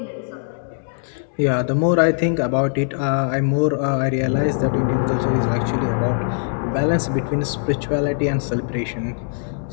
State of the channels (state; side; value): silent; right; digital silence